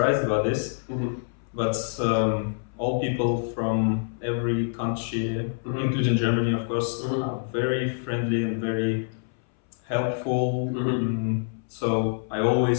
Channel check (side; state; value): right; silent; 61 dB below the other